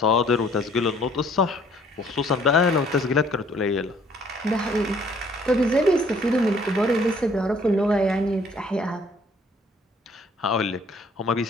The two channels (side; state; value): both; normal; correlation 0.60